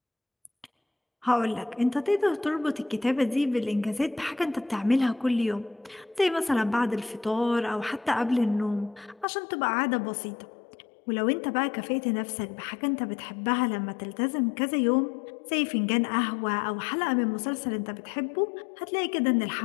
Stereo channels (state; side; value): drops out; right; at 9.2 s